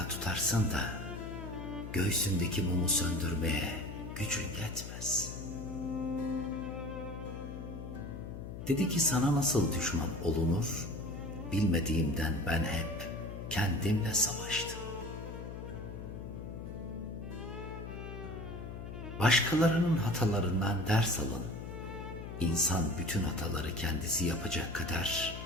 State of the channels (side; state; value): left; noise; hum, 9 dB below the sound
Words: tutarsın da göğsündeki mumu söndürmeye gücün yetmez. Dedi ki sana nasıl düşman olunur, bilmediğimden ben hep kendimle savaştım. Başkalarının hatalarından ders alın. İnsan bütün hataları kendisi yapacak kadar